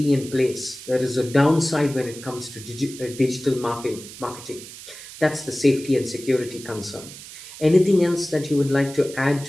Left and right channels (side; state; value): right; noise; hiss, 15 dB below the sound